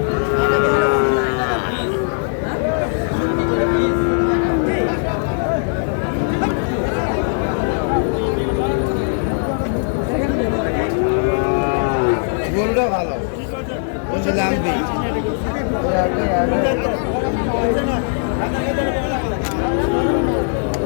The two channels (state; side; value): silent; right; 66 dB below the other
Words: গরুটা ভালো বলছে লাম্বি।